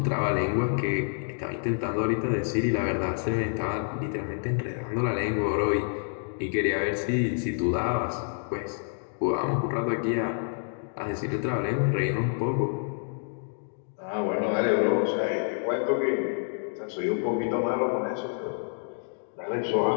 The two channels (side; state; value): right; silent; 59 dB below the other